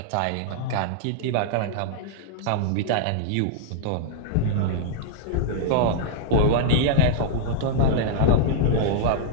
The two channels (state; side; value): different; both; correlation -0.02